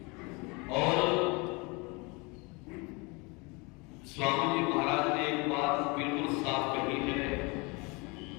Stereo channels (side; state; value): right; quieter; 28.2 dB